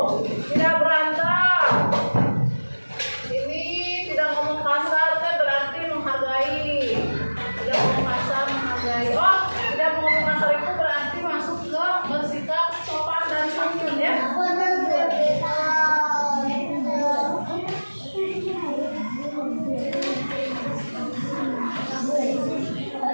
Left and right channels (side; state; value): both; inverted; correlation -1.00